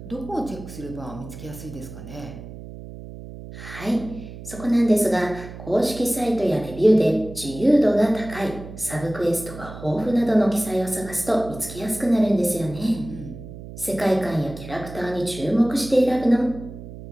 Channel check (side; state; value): right; noise; hum, 13 dB below the sound